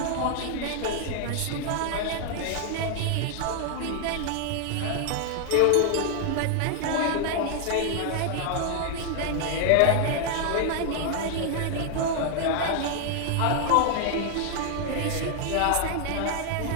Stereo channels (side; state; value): both; different; correlation 0.00